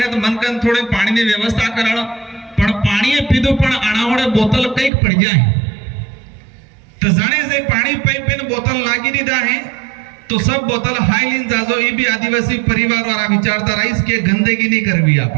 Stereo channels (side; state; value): left; drops out; at 4.9 s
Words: तो मन कन थोड़े पानी की व्यवस्था करा पण पानी पीधो पण अणावड़े बोतल कई पड़ जाए तो जाने से पानी पाइप में बोतल लागी दीदा है तो सब बोतल हाई लीन जाजो। ये भी आदिवासी परिवार वाला विचारधारा इसके गंदगी नहीं करवी